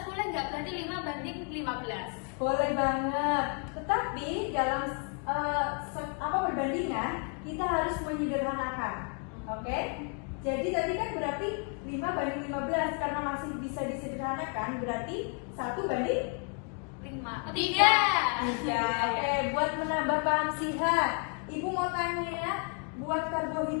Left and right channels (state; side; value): quieter; right; 38.1 dB